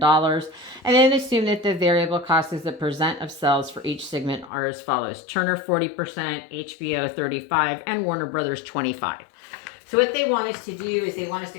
And then assume that the variable cost as a percent of sales for each segment are as follows: Turner 40%, HBO 35%, and Warner Brothers 25%. So what they want us to do is they want us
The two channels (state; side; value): drops out; right; at 4.5 s